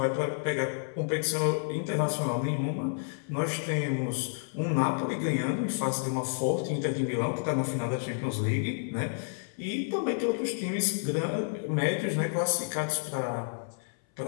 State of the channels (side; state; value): right; silent; 58 dB below the other